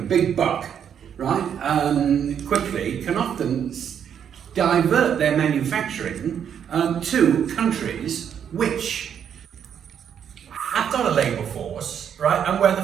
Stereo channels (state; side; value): quieter; left; 8.5 dB